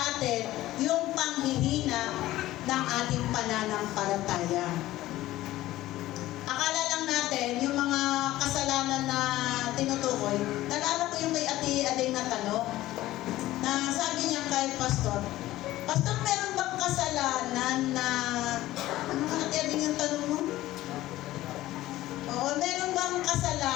atin yung panghihina ng ating pananampalataya. Akala lang natin yung mga kasalanan na tinutukoy. Nalala ko yung kay Ate Aday na tanong na sabi niya kay Pastor, Pastor, meron bang kasalanan na ano nga Ate Aday yung tanong mo? Oo, meron bang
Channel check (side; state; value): right; quieter; 15.9 dB